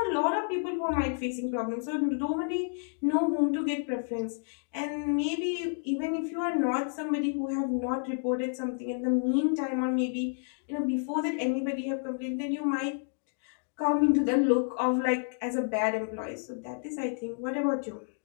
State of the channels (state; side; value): silent; right; digital silence